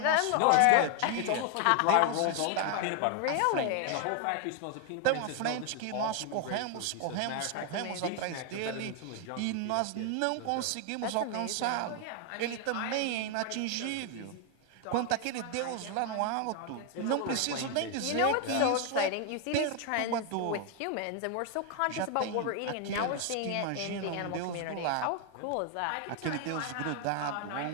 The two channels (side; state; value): both; different; correlation 0.00